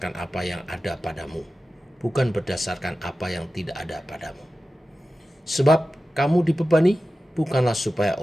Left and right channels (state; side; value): normal; both; correlation 0.94